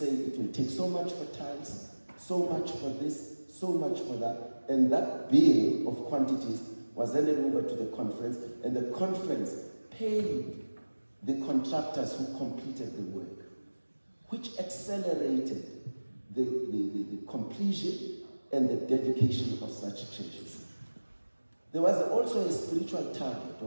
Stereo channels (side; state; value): both; inverted; correlation -1.00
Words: it will take so much for tiles, so much for this, so much for that, and that bill of quantities was handed over to the conference, and the conference paid the contractors who completed the work, which accelerated the completion and the dedication of such churches. There was also a spiritual target